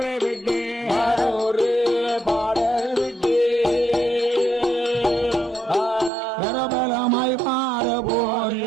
விட்டு ஒரு பாடர் விட்டு பரபலமாய் பாட போரி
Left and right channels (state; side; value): drops out; left; at 6.1 s